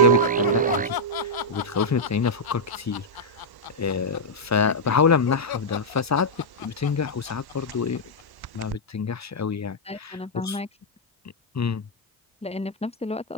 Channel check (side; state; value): both; normal; correlation -0.06